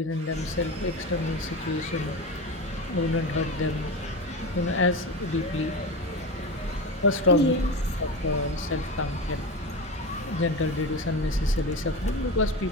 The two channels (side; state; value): both; normal; correlation 0.24